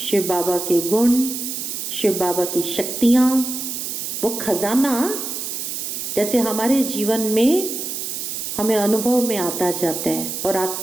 बाबा के गुण, शिव बाबा की शक्तियां, वो खजाना जैसे हमारे जीवन में हमें अनुभव में आता जाता है और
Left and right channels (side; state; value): right; noise; hiss, 5 dB below the sound